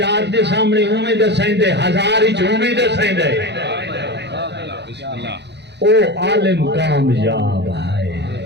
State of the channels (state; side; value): late; left; 0.50 ms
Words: دے سامنے ہومیں دسائیں دے ہزار ہی ہومیں دسائیں دے او عالم کامیاب ہے